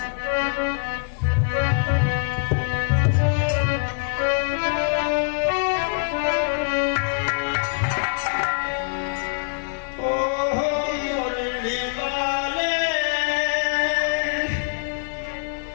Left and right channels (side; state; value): right; silent; digital silence